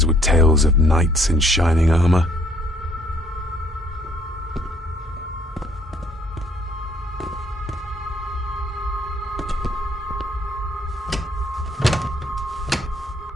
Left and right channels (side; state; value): both; normal; correlation 0.63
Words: with tales of knights in shining armor.